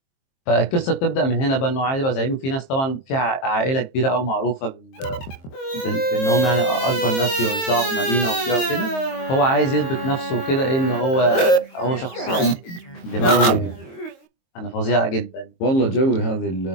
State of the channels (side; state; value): right; late; 23 ms